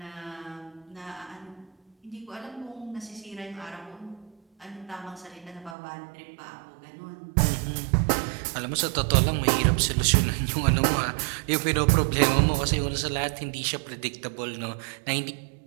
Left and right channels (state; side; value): drops out; left; at 5.8 s